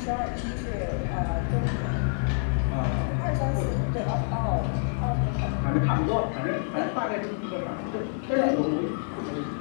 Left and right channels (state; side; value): silent; right; 55 dB below the other